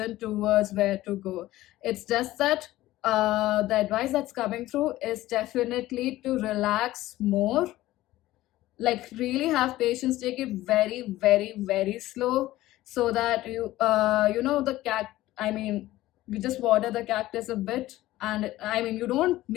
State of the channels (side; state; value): right; quieter; 16.2 dB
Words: towards where to go. It's just that the advice that's coming through is definitely to relax more, like really have patience, take it very, very, very slow, so that the I mean, you just water the cactus a bit, and I mean, you don't